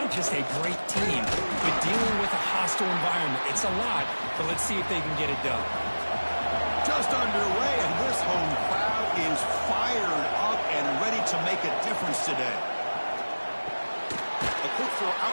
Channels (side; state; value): both; inverted; correlation -1.00